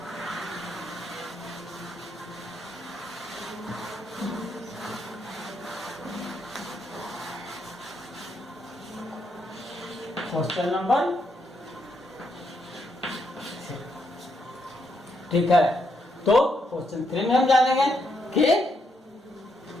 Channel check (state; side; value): normal; both; correlation 0.78